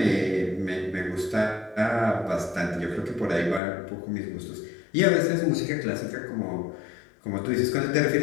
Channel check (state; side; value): drops out; right; at 3.6 s